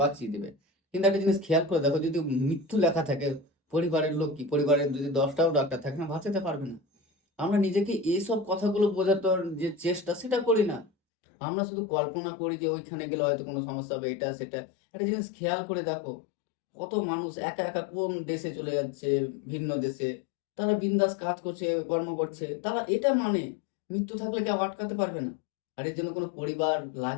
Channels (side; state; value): right; drops out; at 10.9 s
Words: বাঁচিয়ে দেবে। কিন্তু একটা জিনিস খেয়াল করে দেখো, যদি মৃত্যু লেখা থাকে, পরিবারের লোক কি, পরিবারের যদি 10টাও ডাক্তার থাকে না, বাঁচাতে পারবে না। আমরা নিজেকে এইসব কথাগুলো বোঝাতে যে চেষ্টা, সেটা করি না। আমরা শুধু কল্পনা করি যে ওইখানে গেলে হয়তো কোনো সমস্যা হবে, এটা সেটা। একটা জিনিস খেয়াল করে দেখো, কত মানুষ একা একা কোন দেশে চলে যাচ্ছে, ভিন্ন দেশে, তারা বিন্দাস কাজ করছে, কর্ম করছে, তারা এটা মানে মৃত্যু থাকলে কেউ আটকাতে পারবে না, আর এর জন্য কোনো পরিবার